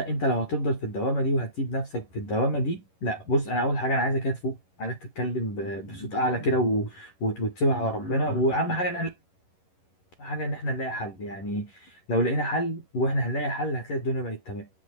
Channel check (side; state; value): right; late; 11 ms